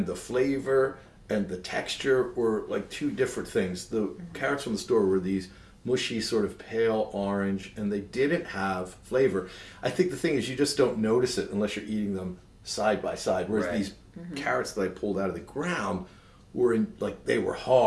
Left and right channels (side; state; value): both; identical; correlation 1.00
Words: the flavor and the texture were like 2 different things. The carrots from the store were these mushy, sort of pale orange, and they didn't have flavor. I think the thing is you just don't notice it unless you're eating them side by side, whereas these carrots that I pulled out of the ground were they were